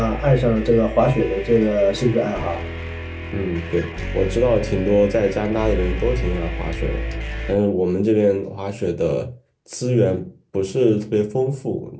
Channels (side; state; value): both; identical; correlation 1.00